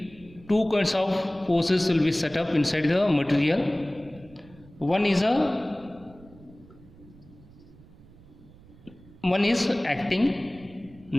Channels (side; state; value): right; noise; rumble, 23 dB below the sound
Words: two kinds of forces will be set up inside the material. One is acting